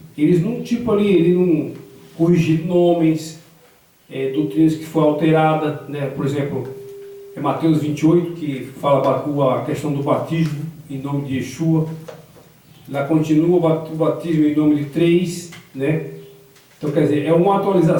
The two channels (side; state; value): both; identical; correlation 1.00